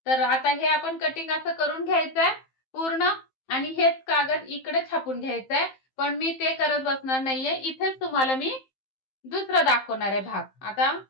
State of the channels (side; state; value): right; late; 15 ms